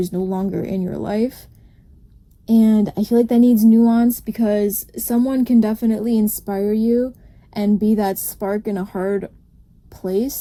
no longer in your life. And I feel like that needs nuance, because someone can definitely inspire you and be that spark in a hard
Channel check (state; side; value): identical; both; correlation 1.00